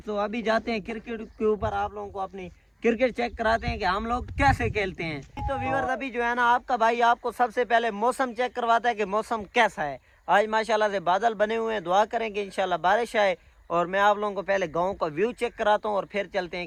अभी जाते हैं क्रिकेट के ऊपर, आप लोगों को अपनी क्रिकेट चेक कराते हैं कि हम लोग कैसे खेलते हैं। तो व्यूअर्स अभी जो है ना आपका भाई आपको सबसे पहले मौसम चेक करवाता है कि मौसम कैसा है। आज माशाल्लाह से बादल बने हुए हैं, दुआ करेंगे इंशाल्लाह बारिश आए। और मैं आप लोगों को पहले गांव का व्यू चेक कराता हूँ और फिर चलते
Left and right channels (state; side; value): identical; both; correlation 1.00